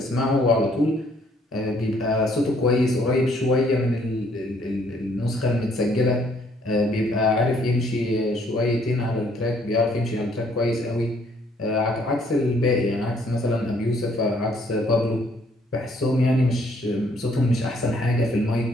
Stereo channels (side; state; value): both; normal; correlation 0.65